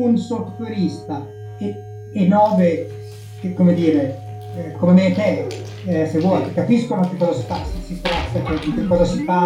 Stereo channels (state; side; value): identical; both; correlation 1.00